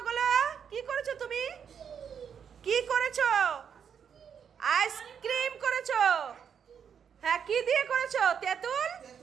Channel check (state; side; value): quieter; left; 7.5 dB